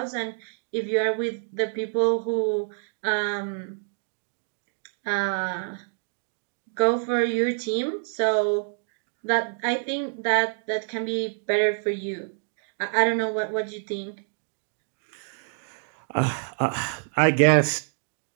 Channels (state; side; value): silent; left; digital silence